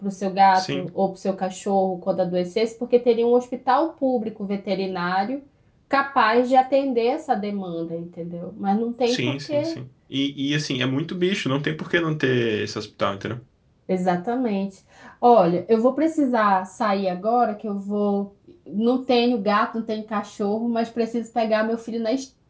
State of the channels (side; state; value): both; identical; correlation 1.00